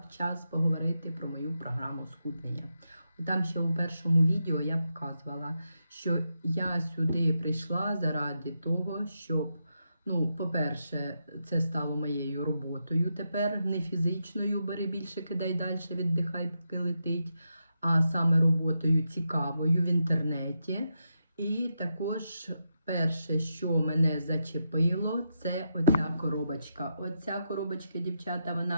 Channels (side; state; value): both; inverted; correlation -0.85